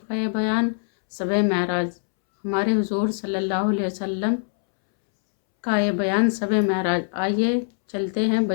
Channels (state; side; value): silent; right; 63 dB below the other